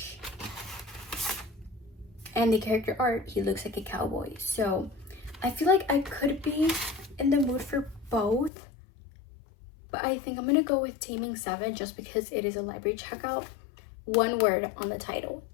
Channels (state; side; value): drops out; right; at 8.5 s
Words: And the character art, he looks like a cowboy. So I feel like I could be in the mood for both. But I think I'm gonna go with Taming 7 just because it is a library checkout. One word on the title,